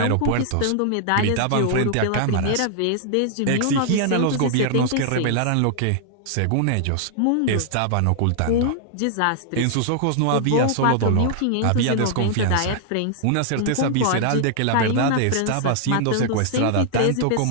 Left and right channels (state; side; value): different; both; correlation 0.00